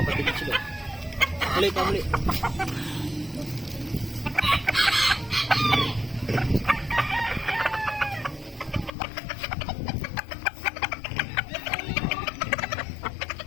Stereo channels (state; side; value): drops out; right; at 8.9 s